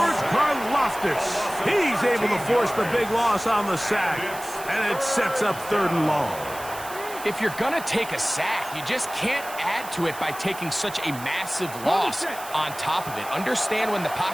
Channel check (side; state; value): right; noise; hiss, 14 dB below the sound